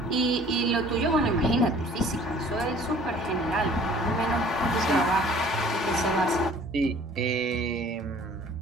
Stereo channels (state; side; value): normal; both; correlation 0.52